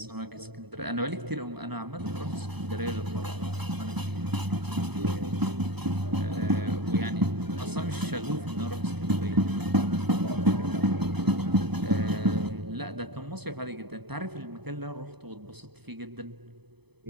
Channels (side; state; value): left; late; 0.98 ms